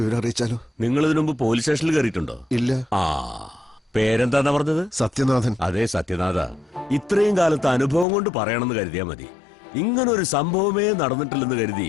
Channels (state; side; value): drops out; right; at 8.1 s